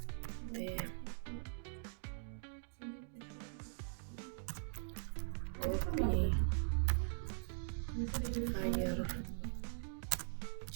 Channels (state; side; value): silent; left; digital silence